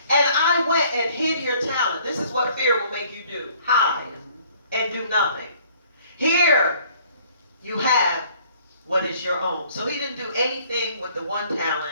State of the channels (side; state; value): both; inverted; correlation -0.58